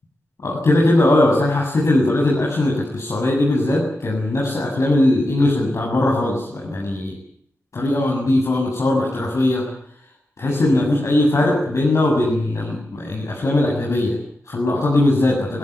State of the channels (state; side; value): normal; both; correlation 0.89